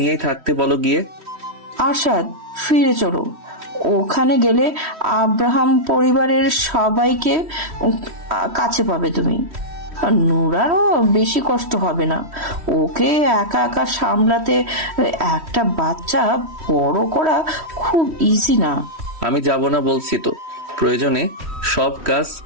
নিয়েই থাকতে বলো গিয়ে। আরশাদ, ফিরে চলো। ওখানে গেলে আব্রাহাম পরিবারের সবাইকে কাছে পাবে তুমি। নুরারও বেশি কষ্ট হবে না। ওকে একা একা সামলাতে একটা বাচ্চা বড় করা খুব ইজি না। আমি যাব না বলছি তো। প্রয়োজনে সব কাজ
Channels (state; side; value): late; left; 3.1 ms